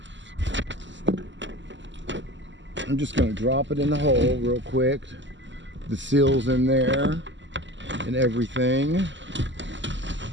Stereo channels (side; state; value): left; late; 0.54 ms